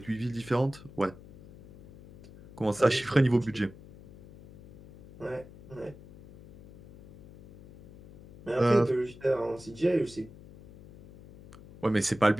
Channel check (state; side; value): noise; left; hum, 20 dB below the sound